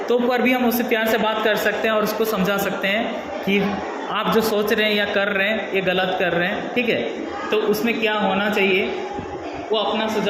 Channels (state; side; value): identical; both; correlation 1.00